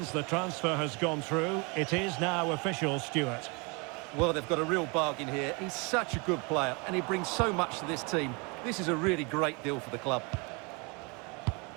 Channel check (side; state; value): left; quieter; 30.3 dB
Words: The transfer has gone through. It is now official, Stuart. Well, they've got a real bargain here. He's such a good player, and he brings so much to this team. This is a really great deal for the club.